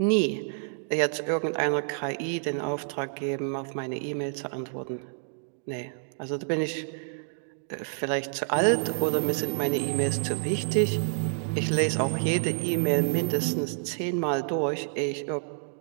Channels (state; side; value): silent; left; digital silence